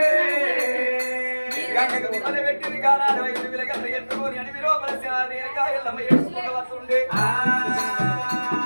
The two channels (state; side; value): inverted; both; correlation -1.00